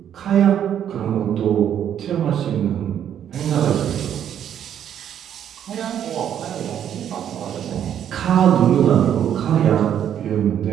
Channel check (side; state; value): left; quieter; 9.6 dB